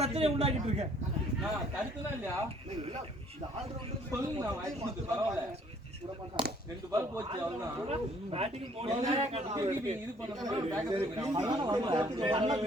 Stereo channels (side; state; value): both; normal; correlation 0.60